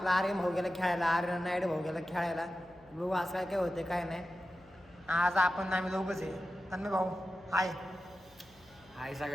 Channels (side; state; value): left; noise; hum, 29 dB below the sound